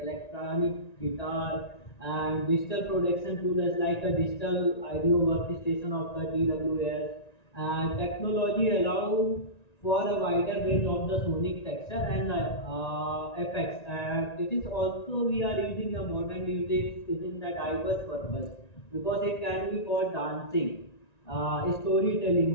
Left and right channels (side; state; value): right; late; 1.9 ms